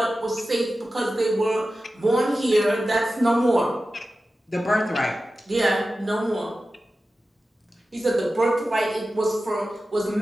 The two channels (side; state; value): both; normal; correlation 0.94